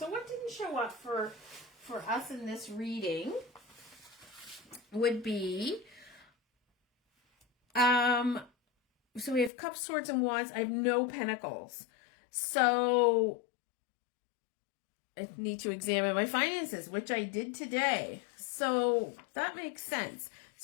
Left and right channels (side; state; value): right; drops out; at 9.5 s